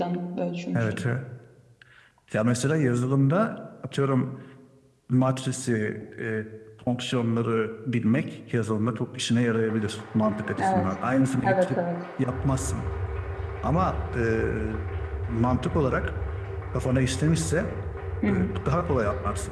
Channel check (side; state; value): both; identical; correlation 1.00